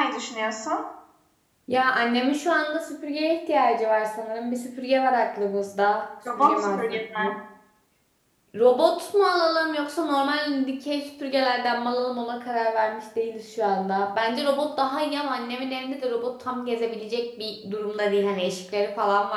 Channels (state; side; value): identical; both; correlation 1.00